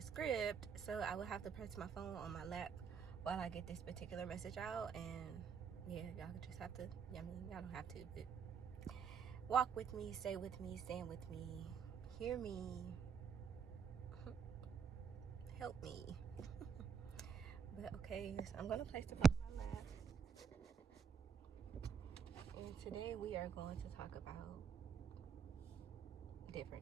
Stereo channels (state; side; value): quieter; left; 6.6 dB